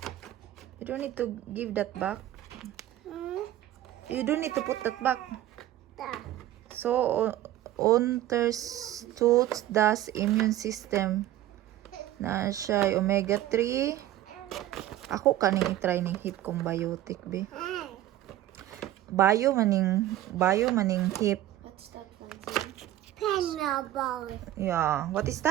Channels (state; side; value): quieter; left; 13.7 dB